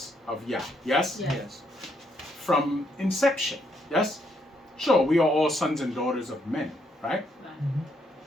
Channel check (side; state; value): both; normal; correlation 0.74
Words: of Yah. Yes? Yes. Yes. From inception. Yes? Sure, we are all sons and daughters of men, right? Right.